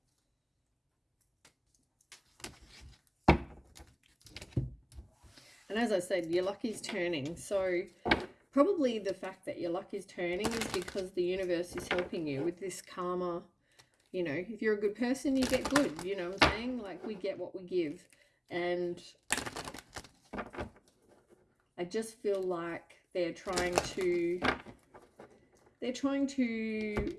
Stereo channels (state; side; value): identical; both; correlation 1.00